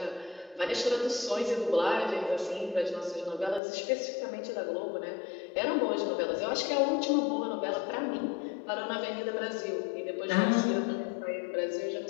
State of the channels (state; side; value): drops out; right; at 3.6 s